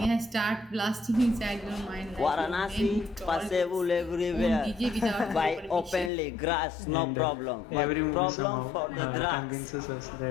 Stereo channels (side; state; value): right; drops out; at 6.1 s